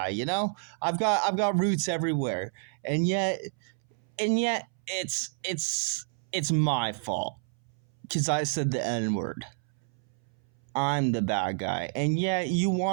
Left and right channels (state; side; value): silent; left; 58 dB below the other